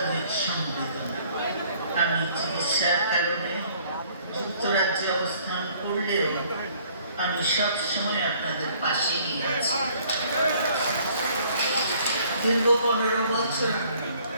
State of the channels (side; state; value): both; inverted; correlation -0.59